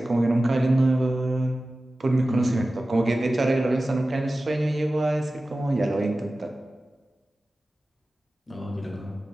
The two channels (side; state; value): both; normal; correlation 0.96